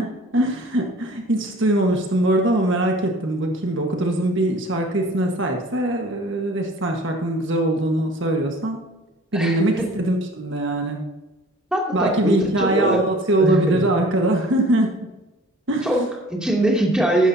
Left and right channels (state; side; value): normal; both; correlation 0.49